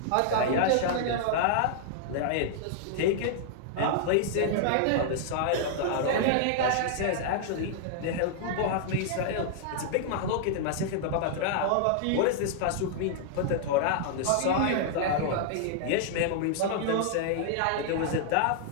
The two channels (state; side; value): different; both; correlation -0.01